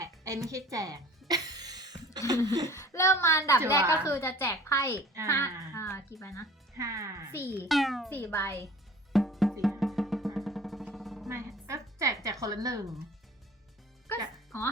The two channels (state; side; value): normal; both; correlation 0.46